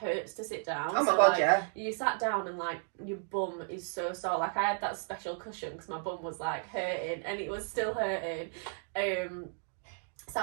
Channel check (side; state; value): left; silent; 55 dB below the other